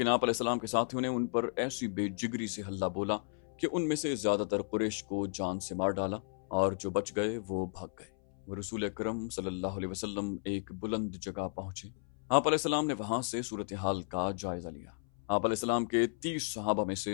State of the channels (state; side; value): silent; right; 55 dB below the other